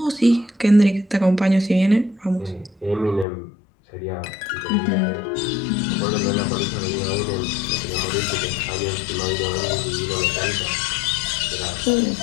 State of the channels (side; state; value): right; drops out; at 3.2 s